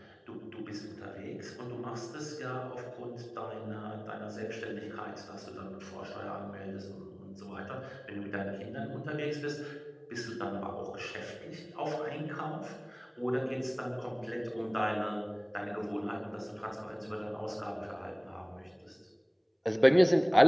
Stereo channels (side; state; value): both; identical; correlation 1.00